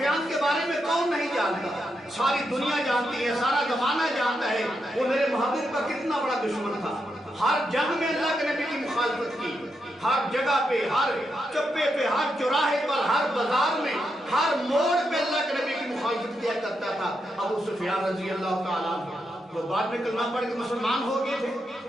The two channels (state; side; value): normal; both; correlation 0.84